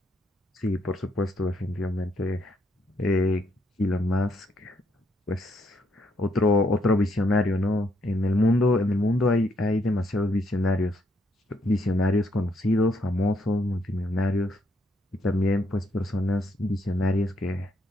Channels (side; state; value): both; normal; correlation 0.74